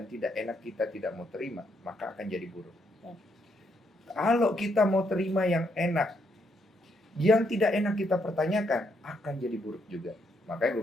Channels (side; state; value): both; normal; correlation 0.75